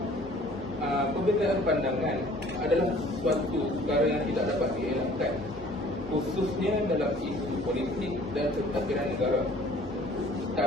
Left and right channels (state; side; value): normal; both; correlation 0.52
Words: perbezaan pandangan adalah suatu perkara yang tidak dapat dielakkan, khususnya dalam isu politik dan pentadbiran negara.